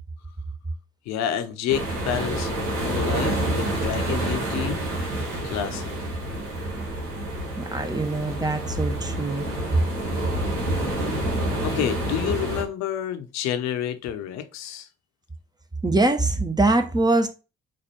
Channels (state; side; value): normal; both; correlation 0.51